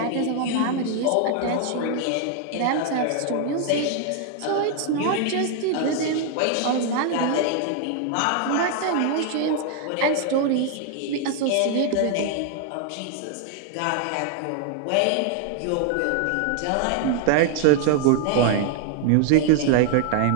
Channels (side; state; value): both; different; correlation 0.00